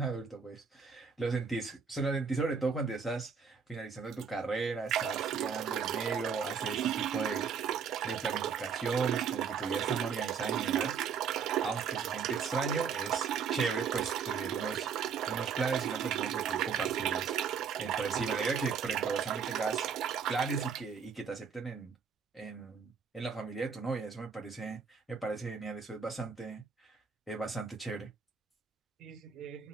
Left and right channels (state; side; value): quieter; left; 6.4 dB